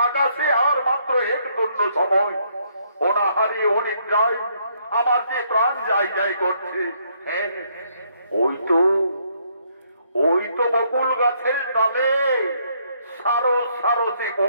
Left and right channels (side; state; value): both; inverted; correlation -0.70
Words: আকাশে আর মাত্র এক দণ্ড সময়। অনাহারে অনেক যায়, আমার যে প্রাণ যাই যাই করছে। হ্যাঁ, ওই তো বকুল গাছের ডালে সারো সারো সে